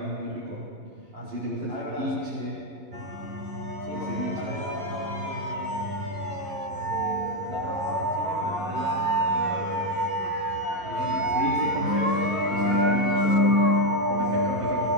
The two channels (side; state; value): left; late; 11 ms